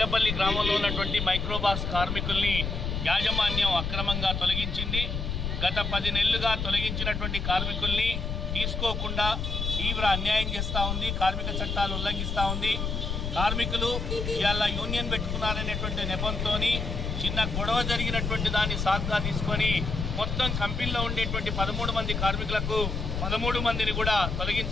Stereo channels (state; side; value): noise; left; rumble, 2 dB below the sound